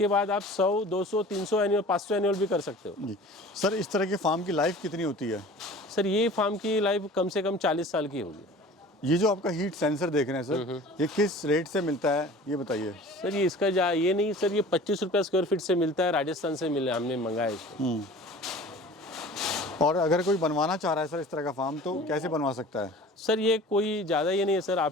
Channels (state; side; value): normal; both; correlation 0.43